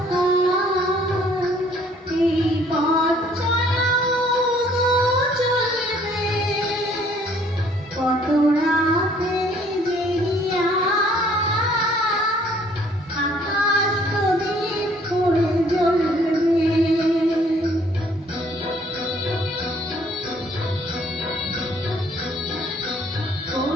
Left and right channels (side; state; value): both; normal; correlation 0.60